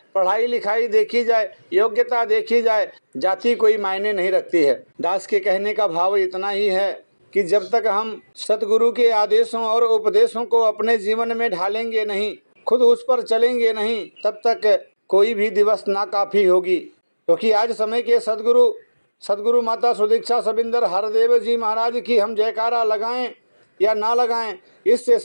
पढ़ाई लिखाई देखी जाए, योग्यता देखी जाए, जाति कोई मायने नहीं रखती है। दास के कहने का भाव इतना ही है कि जब तक हम सतगुरु के आदेशों और उपदेशों को अपने जीवन में ढालेंगे नहीं, खुद उस पर चलेंगे नहीं, तब तक कोई भी दिवस नाकाफी होगी। क्योंकि आज समय के सदगुरु माता सुदीक्षा सबिंदर हरदेव जी महाराज की हम जयकारा लगाएं या ना लगाएं, इससे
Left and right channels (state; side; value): inverted; both; correlation -1.00